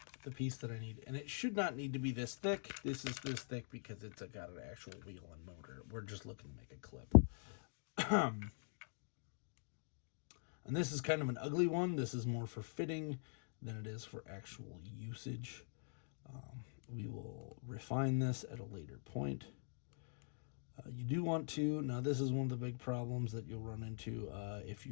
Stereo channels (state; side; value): silent; right; digital silence